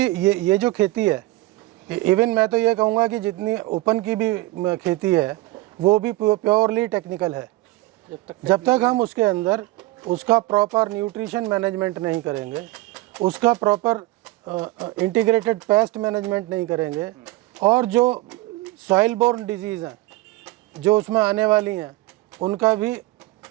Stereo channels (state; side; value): quieter; left; 19.5 dB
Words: ये जो खेती है, इवन मैं तो ये कहूँगा कि जितनी ओपन की भी खेती है वो भी प्योरली टेक्निकल है। जब तक हम उसके अंदर उसका प्रॉपर न्यूट्रिशन मैनेजमेंट नहीं करेंगे, उसका प्रॉपर इंटीग्रेटेड पेस्ट मैनेजमेंट नहीं करेंगे, और जो सॉइल बोर्न डिजीज़ हैं जो उसमें आने वाली हैं उनका भी